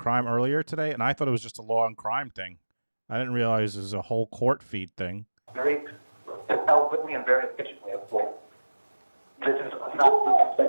earlier today, and I thought it was just a Law and Crime thing. I didn't realize it was a whole court feed thing. Very eloquently and very efficiently. Well, this is not the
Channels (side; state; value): both; inverted; correlation -1.00